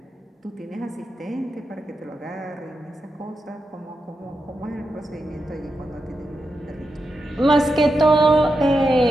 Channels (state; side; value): normal; both; correlation 0.87